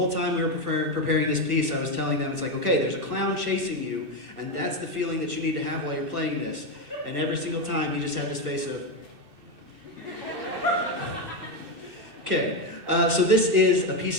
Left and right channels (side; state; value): left; late; 2.6 ms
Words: time we were preparing this piece, I was telling them, it's like, okay, there's a clown chasing you, and that's the feeling that you need to have while you're playing this. And every single time, he just had this face of... Okay, so this is a